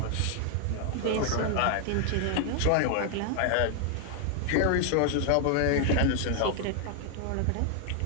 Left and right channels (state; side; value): different; both; correlation 0.00